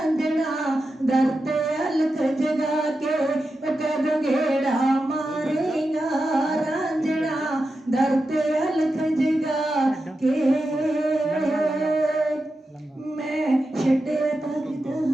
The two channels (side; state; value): both; normal; correlation 0.90